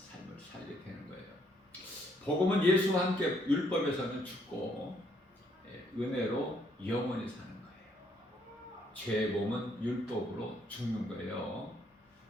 살게 되는 거예요. 복음은 예수와 함께 율법에서는 죽고 은혜로 영원히 사는 거예요. 죄의 몸은 율법으로 죽는 거예요.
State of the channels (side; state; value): both; normal; correlation 0.69